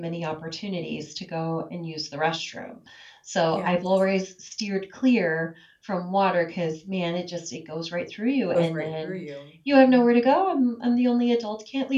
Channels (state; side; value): identical; both; correlation 1.00